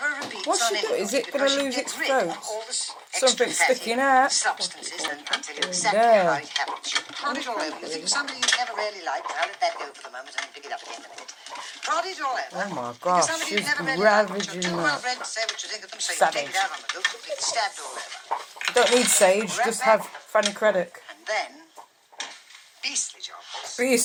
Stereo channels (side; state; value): both; identical; correlation 1.00